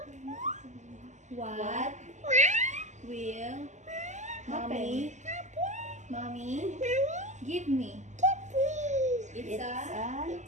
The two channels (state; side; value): late; left; 0.34 ms